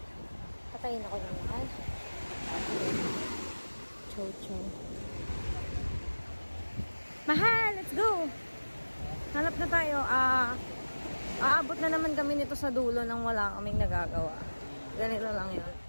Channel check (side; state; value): both; inverted; correlation -1.00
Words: Patayin ako ng mahal. Chow. Mahal, let's go! Hanap na tayo. Aabot na naman kami nito sa dulo nang wala kaming nagagawa. Ganito lang yun.